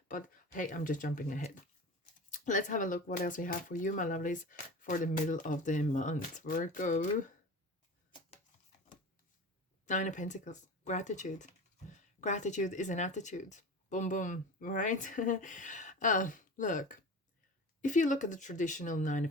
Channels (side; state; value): both; normal; correlation 0.33